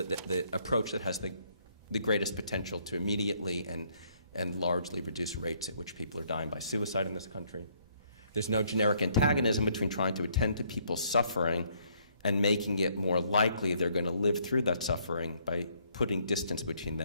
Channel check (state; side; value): inverted; both; correlation -0.68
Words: approach that has the greatest potential to immediately and largely reduce rates at which people are dying by suicide in this country. There's no generic antagonism between trying to attend to people's suffering and making it more likely they're going to live through that suffering by putting distance between